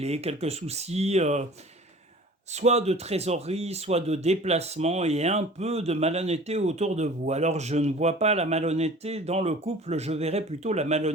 quelques soucis soit de trésorerie, soit de déplacement et un peu de malhonnêteté autour de vous. Alors je ne vois pas la malhonnêteté dans le couple, je verrais plutôt la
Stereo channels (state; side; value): normal; both; correlation 0.44